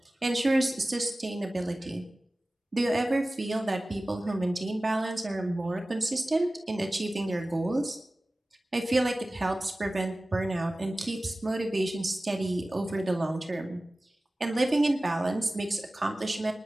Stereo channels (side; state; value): both; normal; correlation 0.97